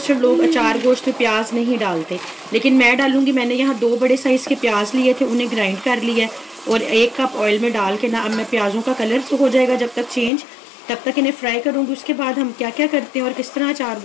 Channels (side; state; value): right; drops out; at 10.3 s